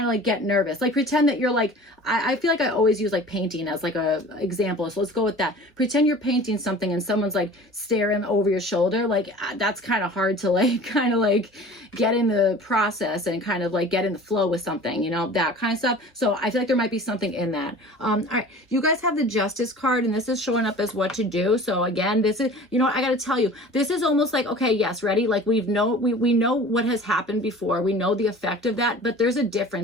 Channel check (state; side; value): normal; both; correlation 0.42